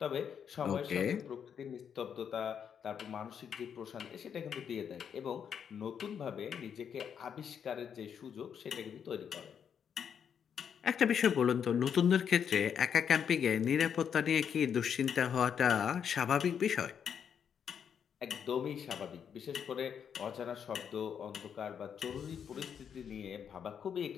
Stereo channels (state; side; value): quieter; right; 7.8 dB